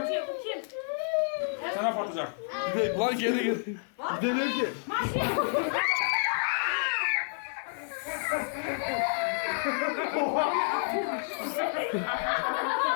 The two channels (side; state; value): right; silent; 56 dB below the other